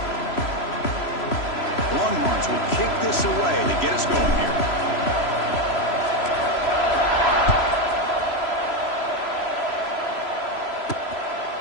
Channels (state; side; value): late; right; 3.0 ms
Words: Longhorns will kick this away to get us going here.